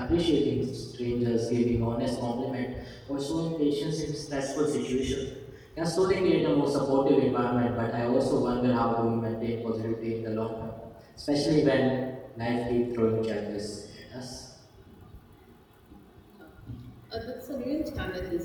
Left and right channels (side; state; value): both; identical; correlation 1.00